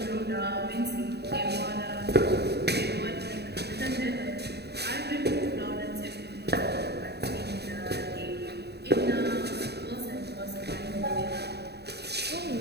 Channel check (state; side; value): late; left; 0.48 ms